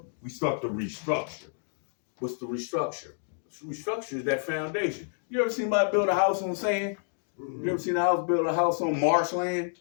we start to restructure. What's the restructure? Restructure is that foundation. You ever seen somebody build a house on sand? You ever seen build a house on marshland?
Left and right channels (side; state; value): right; silent; digital silence